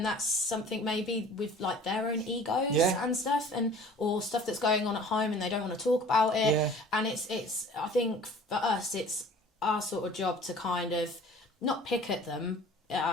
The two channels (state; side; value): normal; both; correlation 0.47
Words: that's something maybe with like their own egos and stuff, or stuff that's going on at home and they don't want to talk about it. Yeah. And it's I think for us, it's our sort of job to kind of not pick at them, at